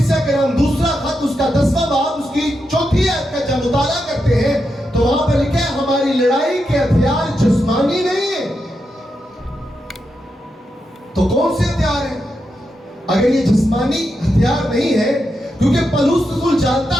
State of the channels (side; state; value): both; normal; correlation 0.85